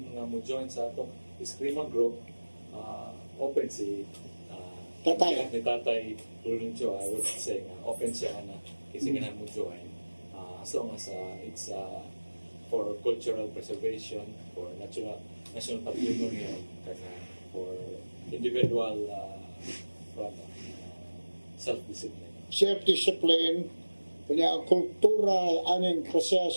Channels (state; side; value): inverted; both; correlation -1.00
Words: nga mo join sa atong eskrima group, open si Tatay. ni Tatay Luluncho, I would say open siya na kasi ganahan mo join as long as it's for cultural preservation, for national patrimony, for individual self-discipline. Self-discipline, kanya kultura, aning kasya